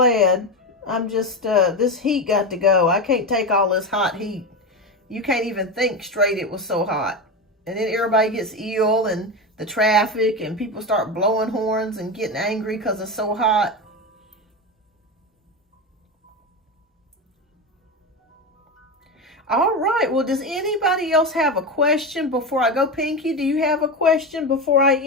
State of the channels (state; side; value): normal; both; correlation 0.18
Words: I'm just, this heat got to go. I can't take all this hot heat. You can't even think straight, it was so hot. And then everybody gets ill, and the traffic, and people start blowing horns and getting angry because it's so hot. All right, well, does anybody else have a question before I go? Pinky, do you have a question before I